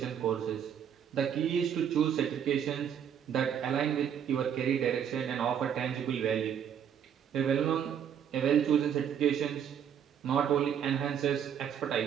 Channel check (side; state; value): left; quieter; 8.6 dB